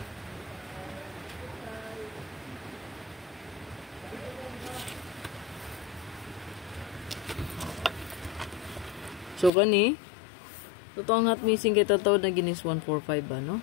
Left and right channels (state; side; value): drops out; right; at 9.5 s